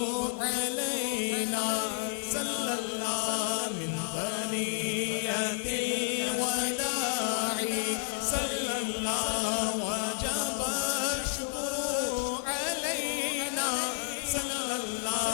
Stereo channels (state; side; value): silent; right; digital silence